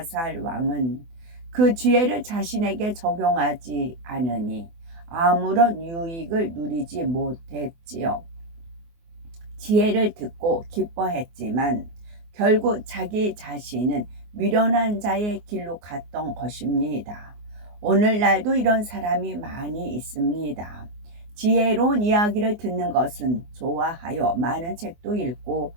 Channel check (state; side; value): late; left; 24 ms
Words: 왕은 그 지혜를 자신에게 적용하지 않으니 아무런 유익을 누리지 못했지요. 지혜를 듣고 기뻐했지만 결국 자기 자신은 미련한 자의 길로 갔던 것입니다. 오늘날도 이런 사람이 많이 있습니다. 지혜로운 이야기를 듣는 것은 좋아하여 많은 책도 읽고